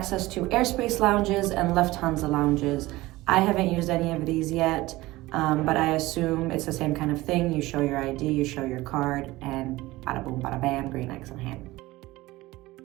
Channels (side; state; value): left; quieter; 18.9 dB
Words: to airspace lounges and Lufthansa lounges. I haven't used any of these yet, but I assume it's the same kind of thing. You show your ID, you show your card, and bada boom, bada bam, green X in hand.